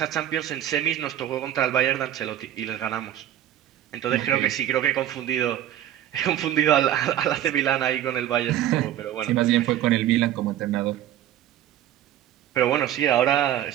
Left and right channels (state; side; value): quieter; left; 11.9 dB